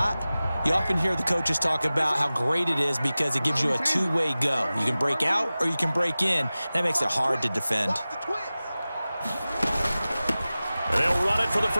you often hear the coaches talk about how great it is because it gives you a two-way go. You can break out or you can break in. That makes it hard to defend. And they'll run it for the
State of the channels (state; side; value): inverted; both; correlation -0.97